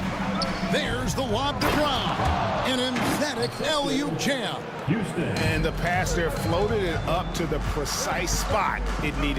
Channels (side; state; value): both; identical; correlation 1.00